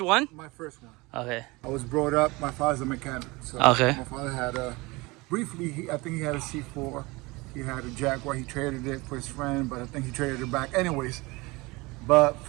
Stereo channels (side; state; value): left; quieter; 23.7 dB